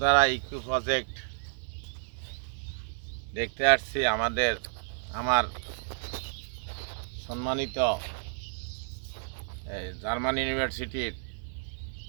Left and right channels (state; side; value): silent; left; digital silence